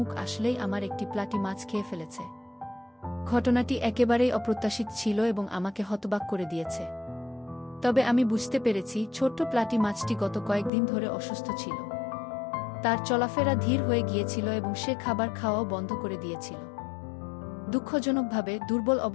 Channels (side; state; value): right; drops out; at 10.7 s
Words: আসলেই আমার একটি প্লাটি মাছ খেয়ে ফেলেছে। ঘটনাটি একেবারেই অপ্রত্যাশিত ছিল এবং আমাকে হতবাক করে দিয়েছে। তবে আমি বুঝতে পেরেছি, ছোট্ট প্লাটি মাছটি গত কয়েকদিন ধরে অসুস্থ ছিল। তার চলাফেরা ধীর হয়ে গিয়েছিল এবং সে খাবার খাওয়াও বন্ধ করে দিয়েছিল। দুঃখজনকভাবে দুর্বল